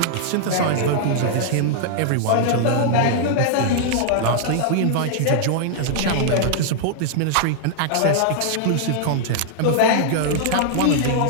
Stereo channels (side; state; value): both; different; correlation -0.01